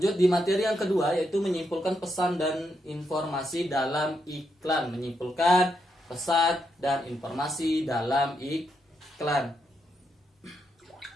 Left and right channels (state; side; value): normal; both; correlation 0.81